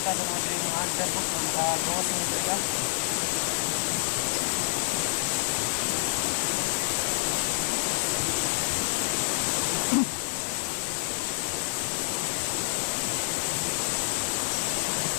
dengan mga hunter po ng gawas ng talaga.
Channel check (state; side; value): silent; right; digital silence